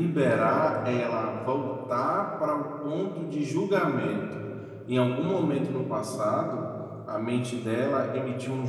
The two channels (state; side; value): identical; both; correlation 1.00